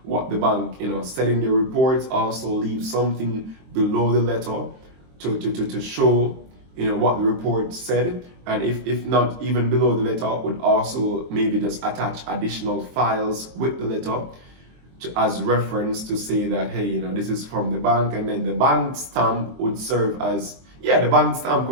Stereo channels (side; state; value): left; late; 23 ms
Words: what the bank, said in the report. Also leave something below the letter to show, what the report said. And if not even below the letter, would also maybe just attach additional files with the letter as reference to say that, hey, this is from the bank. And then the bank stamp would serve as, the bank stamp